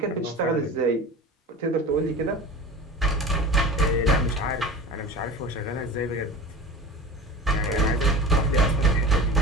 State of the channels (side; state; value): both; normal; correlation 0.34